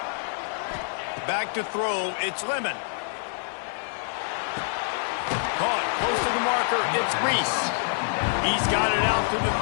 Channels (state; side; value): silent; right; digital silence